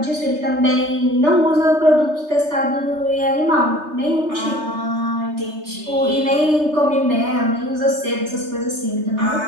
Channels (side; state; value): left; late; 3.3 ms